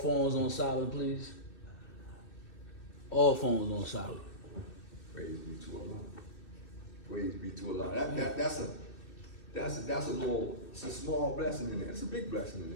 on silent, please? All phones on silent. Praise be to Allah. Praise be to Allah. That's a small blessing in there. It's a big blessing in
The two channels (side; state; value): right; late; 2.6 ms